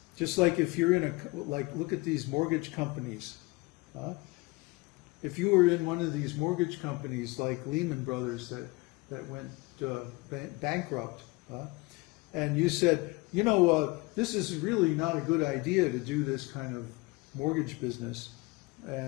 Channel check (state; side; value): quieter; right; 24.0 dB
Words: Just like if you're in look at these mortgage companies. If you were in one of these mortgage companies like Lehman Brothers that went bankrupt, and you said, you know, this is really not a good idea to do this kind of mortgage business,